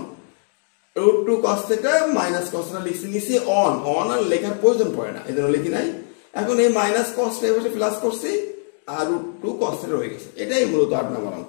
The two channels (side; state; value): right; silent; 60 dB below the other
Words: √2 cos θ - cos θ লিখছি, নিচে অন আর লেখার প্রয়োজন পড়ে না, এজন্য লিখি নাই। এখন এই মাইনাস cos θ এভাবে প্লাস করছি আর √2 cos θ রয়ে গেছে। এটাই মূলত 8 নম্বর অঙ্ক।